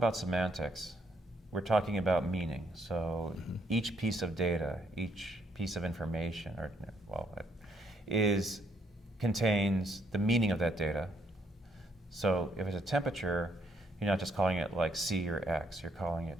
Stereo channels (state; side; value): normal; both; correlation 0.71